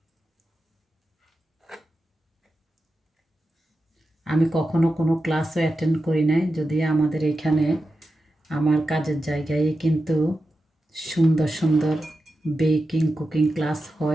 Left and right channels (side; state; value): both; normal; correlation 0.91